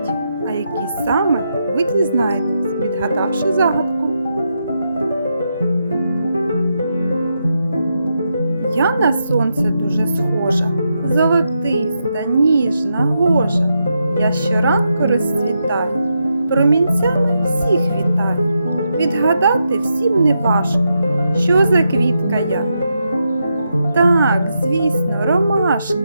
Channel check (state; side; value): inverted; both; correlation -0.84